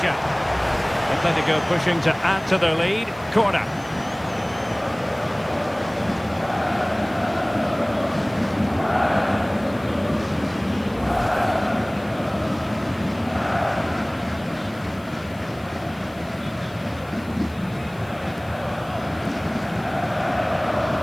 Atletico pushing to add to their lead. Corner.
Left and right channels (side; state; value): left; noise; hiss, 26 dB below the sound